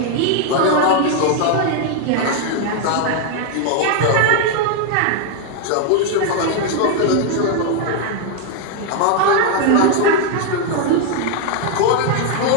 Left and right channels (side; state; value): both; different; correlation 0.00